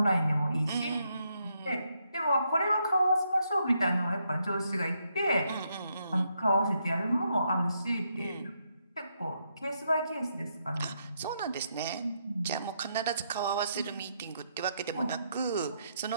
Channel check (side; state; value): both; inverted; correlation -0.78